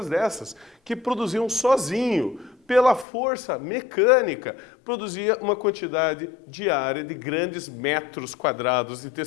dessas, que produziam sozinho, pela força mecânica, produzia uma quantidade diária de grandes metros quadrados de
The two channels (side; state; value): right; drops out; at 3.1 s